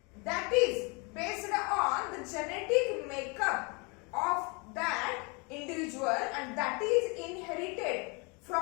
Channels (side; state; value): right; quieter; 30.8 dB